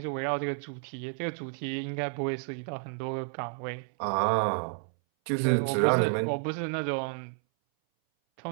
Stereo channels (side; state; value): left; silent; 57 dB below the other